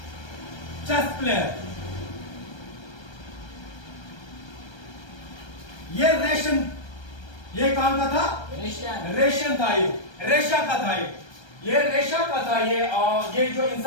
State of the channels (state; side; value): late; right; 1.3 ms